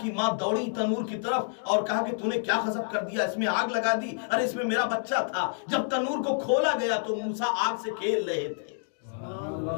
کی ماں دوڑی تنور کی طرف اور کہا کہ تو نے کیا غضب کر دیا, اس میں آگ لگا دی. ارے اس میں میرا بچہ تھا. جب تنور کو کھولا گیا تو موسیٰ آگ سے کھیل رہے تھے.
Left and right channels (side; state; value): right; silent; digital silence